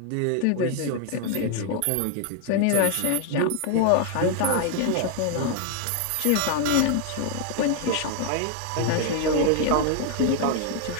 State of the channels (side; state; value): both; different; correlation 0.00